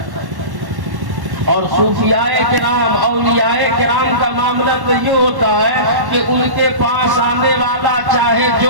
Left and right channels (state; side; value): late; left; 1.1 ms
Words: اور صوفیاء کرام، اولیاء کرام کا معاملہ تو یہ ہوتا ہے کہ ان کے پاس آنے والا چاہے